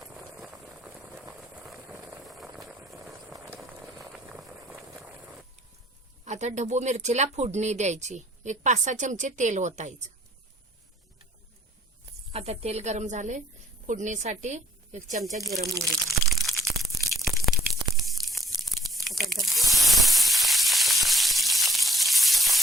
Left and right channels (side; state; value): both; normal; correlation 0.61